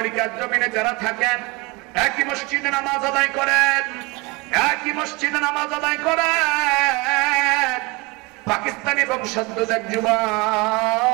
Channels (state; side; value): quieter; left; 26.1 dB